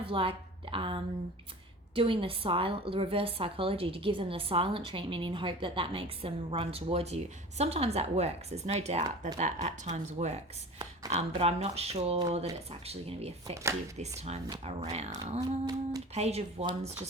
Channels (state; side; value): normal; both; correlation 0.37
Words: like doing the reverse psychology to give them the silent treatment in hope that that makes them run towards you. Sometimes that works. There's no doubt that at times works. But I'm not sure that it's actually going to be effective this time around. Page of Wands